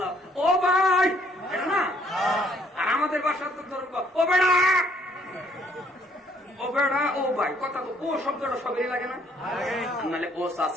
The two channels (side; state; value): both; normal; correlation 0.65